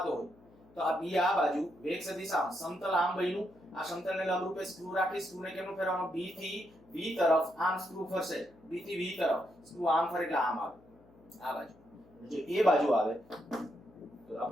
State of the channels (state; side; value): noise; left; hum, 27 dB below the sound